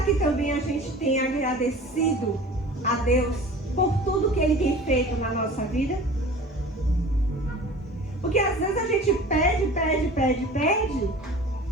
que também a gente tem agradecido a Deus por tudo que Ele tem feito na nossa vida? Porque às vezes a gente pede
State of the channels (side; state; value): both; normal; correlation 0.41